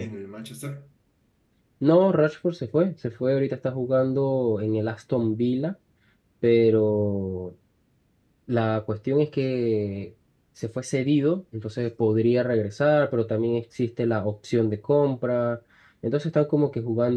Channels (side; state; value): both; identical; correlation 1.00